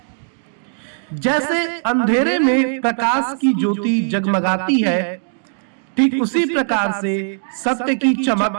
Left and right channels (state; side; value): silent; left; digital silence